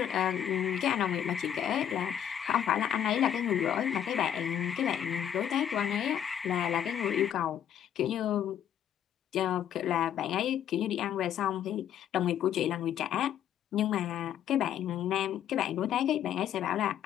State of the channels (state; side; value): quieter; right; 9.9 dB